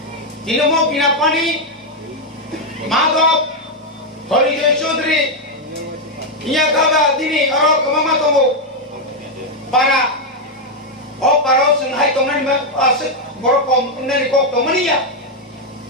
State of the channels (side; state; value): both; normal; correlation 0.01